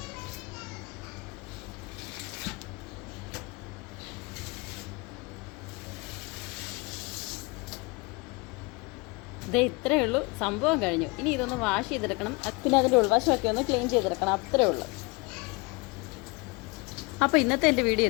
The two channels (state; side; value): quieter; right; 27.6 dB